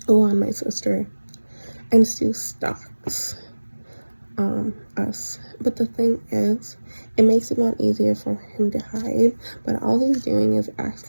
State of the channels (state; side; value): inverted; both; correlation -1.00